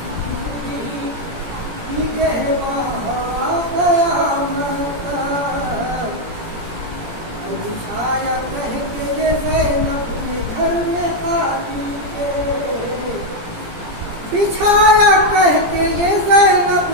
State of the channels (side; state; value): left; late; 17 ms